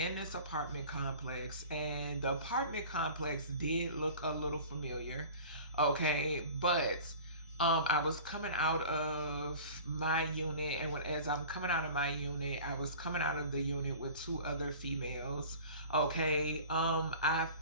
this apartment complex, and the apartment complex did look a little familiar. Okay, but I was coming out of my unit, and as I'm coming out of my unit, I was coming out of the unit with two other females. Okay, I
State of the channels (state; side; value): inverted; both; correlation -0.40